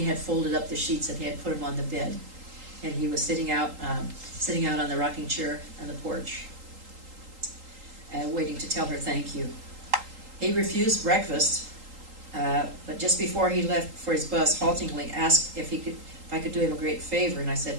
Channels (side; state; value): left; late; 3.8 ms